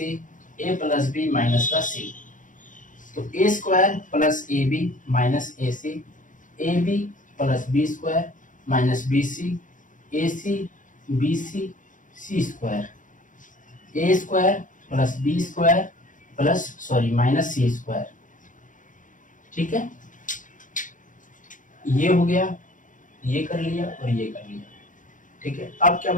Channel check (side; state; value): right; late; 0.38 ms